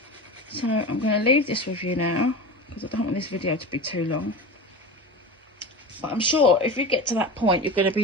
so I'm going to leave this with you now because I don't want this video to be too long. But I'm sure if you get to that point, you're going to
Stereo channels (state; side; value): normal; both; correlation 0.28